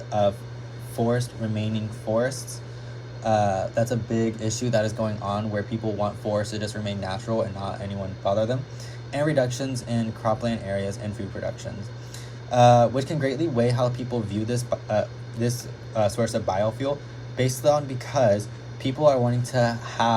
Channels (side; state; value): both; identical; correlation 1.00